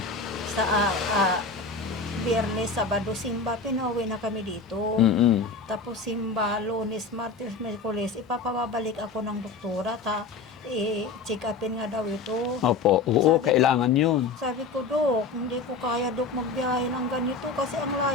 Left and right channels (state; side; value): quieter; right; 4.3 dB